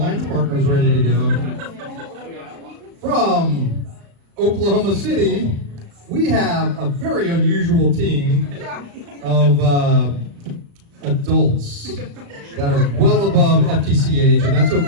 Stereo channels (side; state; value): left; late; 35 ms